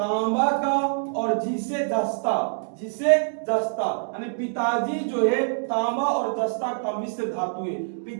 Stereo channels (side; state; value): left; silent; digital silence